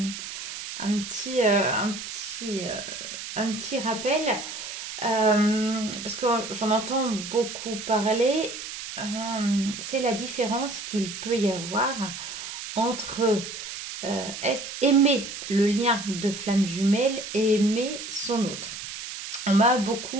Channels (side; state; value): right; noise; hiss, 9 dB below the sound